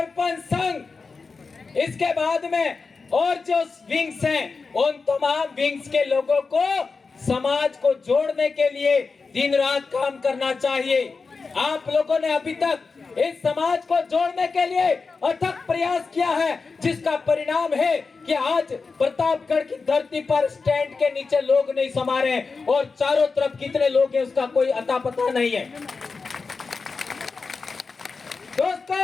संघ, इसके बाद में और जो विंग्स हैं, उन तमाम विंग्स के लोगों को समाज को जोड़ने के लिए दिन रात काम करना चाहिए। आप लोगों ने अभी तक इस समाज को जोड़ने के लिए अथक प्रयास किया है, जिसका परिणाम है कि आज प्रतापगढ़ की धरती पर स्टैंड के नीचे लोग नहीं समा रहे, और चारों तरफ कितने लोग हैं उसका कोई अता पता नहीं है।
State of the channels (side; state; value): right; quieter; 4.5 dB